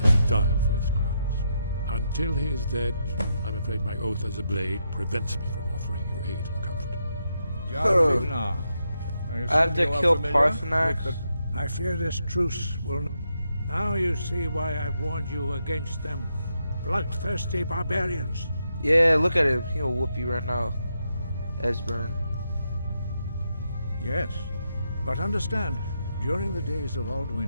that he die for his crimes. Until he is dead, I'm afraid my oath as a Blade prevents me from offering you aid and comfort. I have to kill Parthenax. I fear this truce will... Now you see why I've warned you against them. bloodthirsty barbarians. Yeah, look at him. He'll whoop you right now. Esbern. Yes, but understand, during the days of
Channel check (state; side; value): inverted; both; correlation -0.82